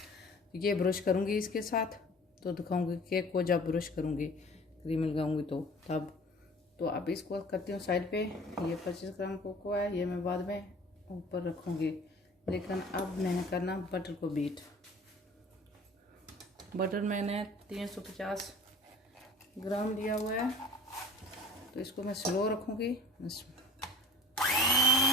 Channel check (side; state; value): both; normal; correlation 0.45